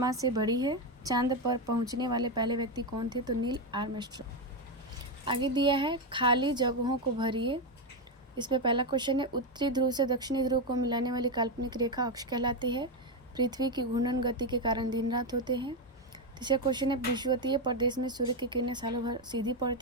से बड़ी है। चांद पर पहुंचने वाले पहले व्यक्ति कौन थे? तो नील आर्मस्ट्रॉन्ग। आगे दिया है, खाली जगहों को भरिए। इसमें पहला क्वेश्चन है, उत्तरी ध्रुव से दक्षिणी ध्रुव को मिलाने वाली काल्पनिक रेखा अक्ष कहलाती है। पृथ्वी की घूर्णन गति के कारण दिन रात होते हैं। तीसरा क्वेश्चन है, विषुवतीय प्रदेश में सूर्य की किरणें सालों भर सीधी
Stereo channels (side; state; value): both; normal; correlation 0.08